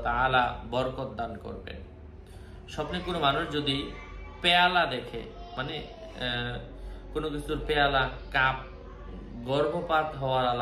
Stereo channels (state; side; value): identical; both; correlation 1.00